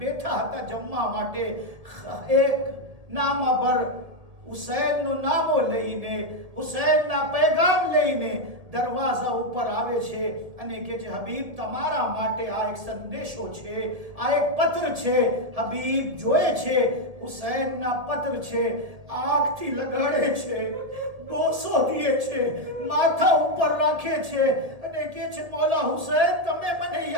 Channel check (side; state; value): left; late; 1.7 ms